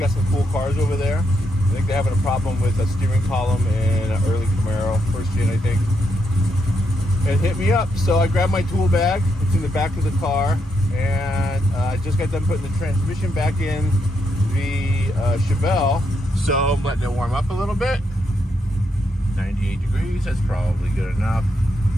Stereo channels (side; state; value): both; normal; correlation 0.80